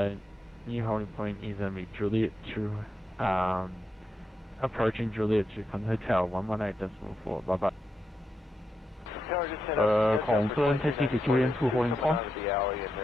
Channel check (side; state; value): both; normal; correlation 0.86